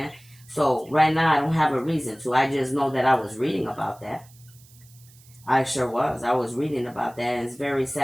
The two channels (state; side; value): noise; right; hiss, 26 dB below the sound